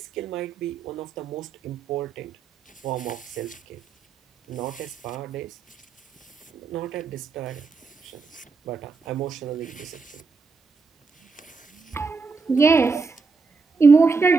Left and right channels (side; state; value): left; quieter; 4.5 dB